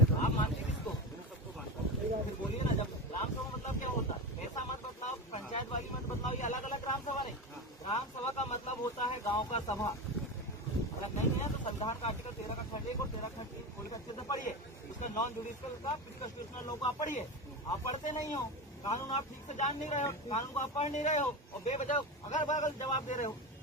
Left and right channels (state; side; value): normal; both; correlation 0.21